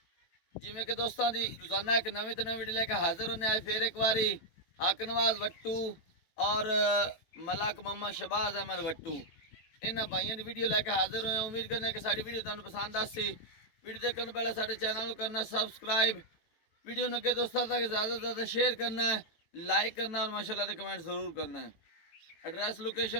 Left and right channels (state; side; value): late; right; 18 ms